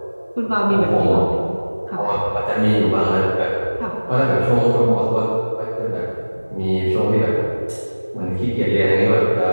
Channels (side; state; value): both; inverted; correlation -1.00